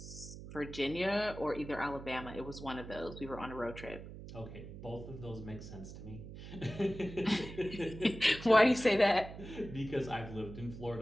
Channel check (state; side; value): noise; right; hum, 12 dB below the sound